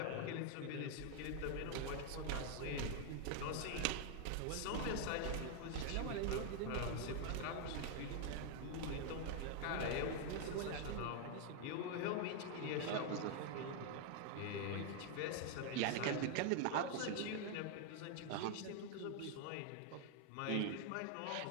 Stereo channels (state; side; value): different; both; correlation 0.00